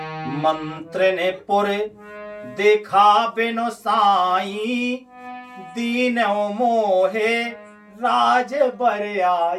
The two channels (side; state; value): both; identical; correlation 1.00